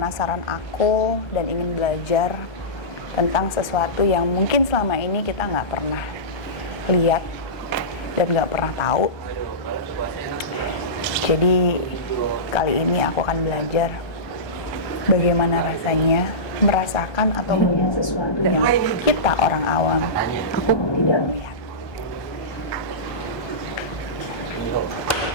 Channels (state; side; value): late; right; 1.2 ms